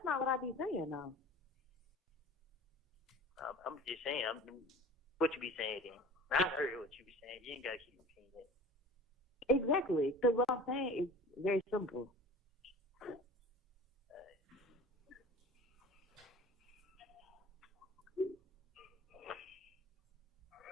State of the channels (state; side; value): normal; both; correlation 0.41